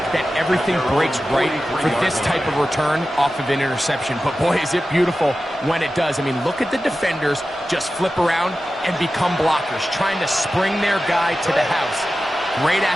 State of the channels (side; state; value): both; normal; correlation 0.93